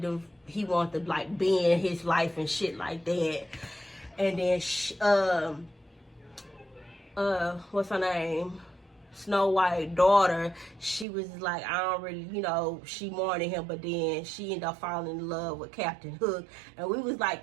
wanted to like be in his life and shit like that. And then what's her name? Snow White daughter, she was like, I don't really, she wanted him, but then she ended up falling in love with Captain Hook, and we was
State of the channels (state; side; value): drops out; left; at 11.1 s